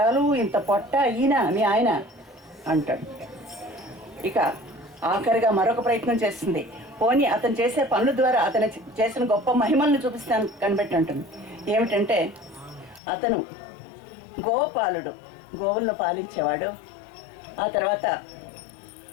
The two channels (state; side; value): drops out; right; at 13.0 s